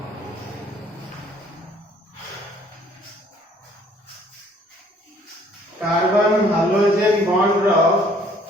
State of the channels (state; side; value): normal; both; correlation 0.59